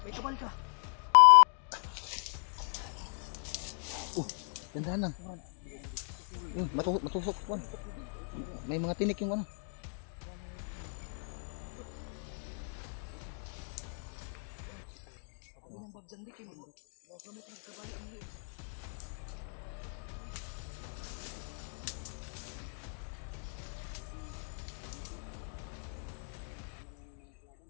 May kabal ka. Gandahan lang. Matusok. May mga tinik yung ano.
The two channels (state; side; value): silent; right; 53 dB below the other